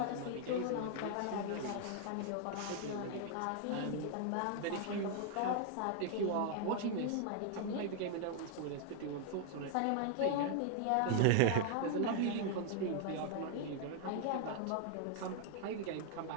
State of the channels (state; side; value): different; both; correlation 0.00